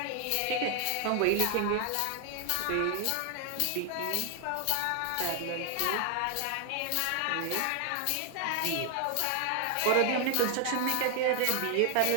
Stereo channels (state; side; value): different; both; correlation 0.00